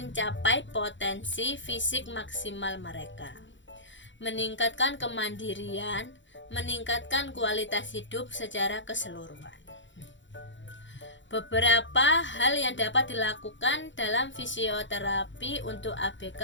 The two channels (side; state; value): right; late; 0.54 ms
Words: potensi fisik maksimal mereka, meningkatkan kemandirian, meningkatkan kualitas hidup secara keseluruhan. Beberapa hal yang dapat dilakukan dalam fisioterapi untuk